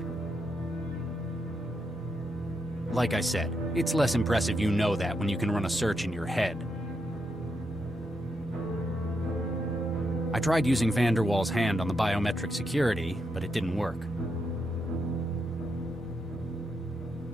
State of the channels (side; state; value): both; normal; correlation 0.82